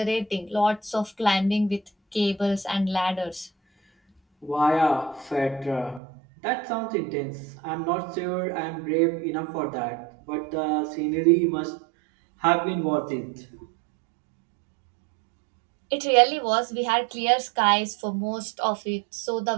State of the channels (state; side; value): drops out; left; at 6.0 s